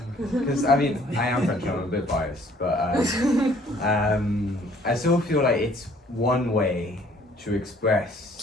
Because I mean, I am French, I'm a bit biased, but I still feel like it's one way to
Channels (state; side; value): normal; both; correlation 0.59